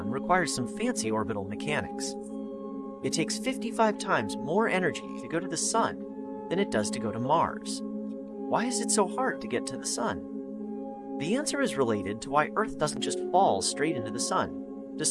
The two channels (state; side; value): identical; both; correlation 1.00